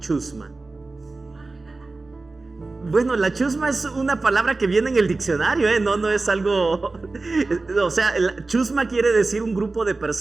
Bueno, la chusma es una palabra que viene en el diccionario, no es algo... O sea, la chusma quiere decir un grupo de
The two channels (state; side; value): quieter; left; 3.5 dB